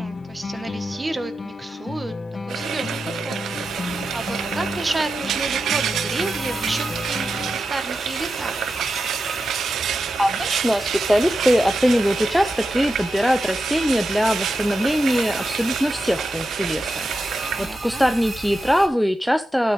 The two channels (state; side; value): normal; both; correlation 0.90